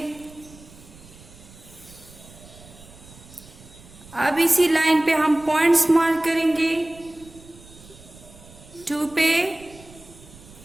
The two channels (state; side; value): noise; right; rumble, 21 dB below the sound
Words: अब इसी लाइन पे हम पॉइंट्स मार्क करेंगे 2 पे